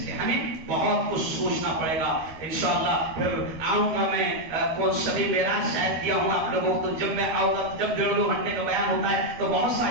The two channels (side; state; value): left; late; 13 ms